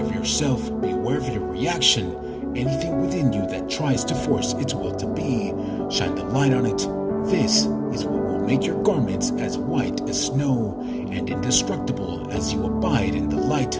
of yourself, be aware of your reaction. Anything within you that tries to force its will to be, shine the light on it. This is what will make your garments as white as snow and indestructible as you abide in the light,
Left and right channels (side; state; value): both; identical; correlation 1.00